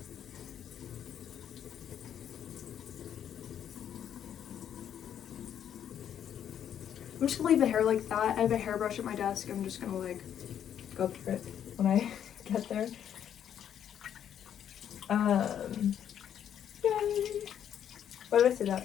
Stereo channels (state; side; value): quieter; right; 9.5 dB